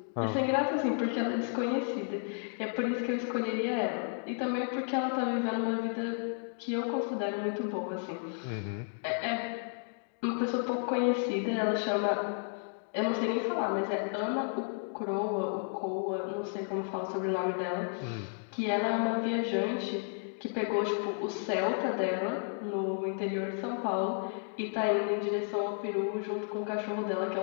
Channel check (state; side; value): silent; right; 56 dB below the other